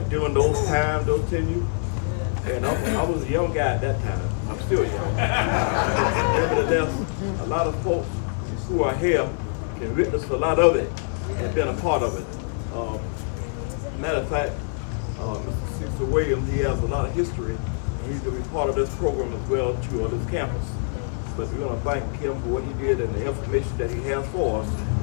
during those times, those tenures. And I was a young guy at that time. I'm still young. But nevertheless, a lot of folks who are here can witness a lot of it and been a part of it. Matter of fact, Mr. Cecil Williams, he has a lot of history, and he's going to be part of this program as well too, on this campus. But we're going to thank him for what he did and the information that he has for us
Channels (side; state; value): right; silent; 55 dB below the other